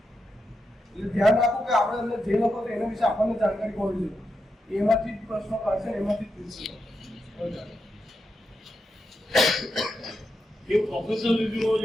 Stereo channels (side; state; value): both; normal; correlation 0.85